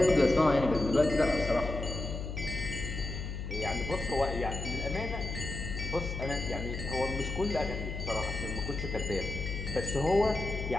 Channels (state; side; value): noise; left; hum, 5 dB below the sound